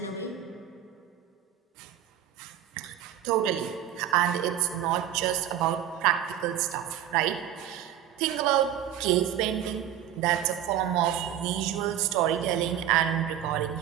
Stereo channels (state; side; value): quieter; left; 10.8 dB